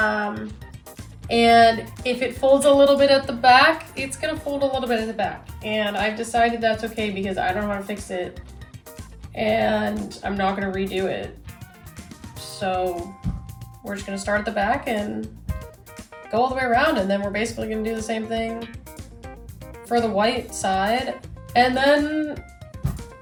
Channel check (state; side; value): identical; both; correlation 1.00